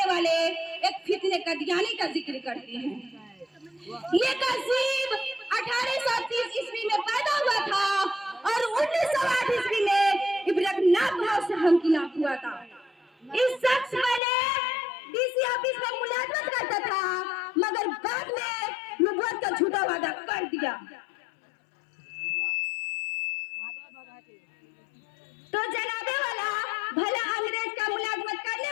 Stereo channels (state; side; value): drops out; right; at 14.2 s